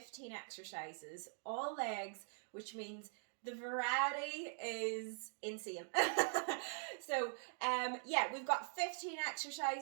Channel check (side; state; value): left; silent; digital silence